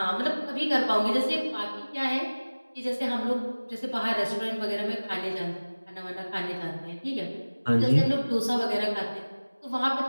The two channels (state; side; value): inverted; both; correlation -1.00